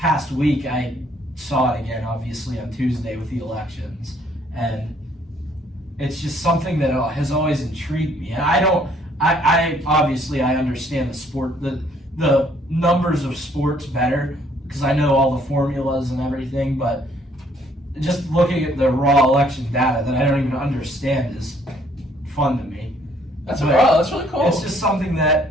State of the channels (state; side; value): normal; both; correlation 0.64